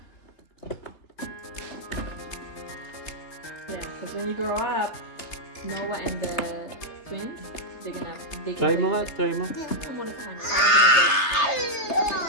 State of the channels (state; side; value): late; right; 3.3 ms